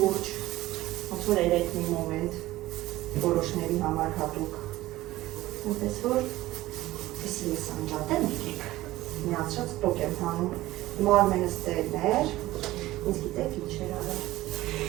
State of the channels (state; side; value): quieter; left; 16.9 dB